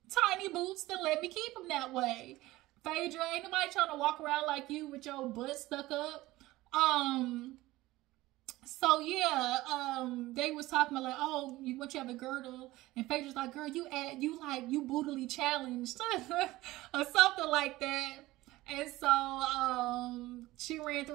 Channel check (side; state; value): left; quieter; 18.0 dB